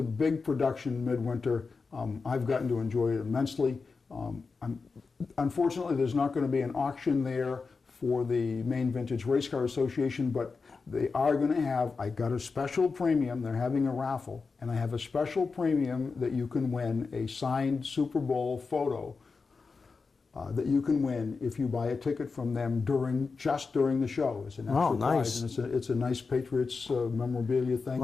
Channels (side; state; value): right; quieter; 4.6 dB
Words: big production midwinter. I've gotten to enjoy it immensely. Unfortunately, there's not going to be an auction there for the Maine Vintage Race Car Association, but they are going to have, I got a special premium, they're having a raffle, and I have a special premium that you can win a signed Super Bowl photo that you can win if you buy a ticket from them just during the show. It's an extra prize, and it's a nice Patriots memorabilia thing.